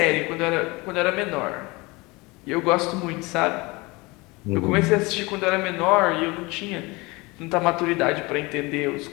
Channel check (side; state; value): right; quieter; 24.3 dB